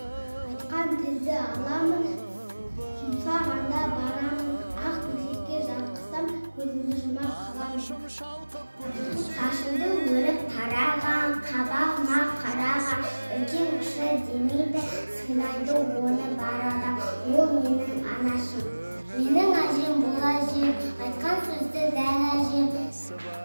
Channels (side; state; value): both; inverted; correlation -1.00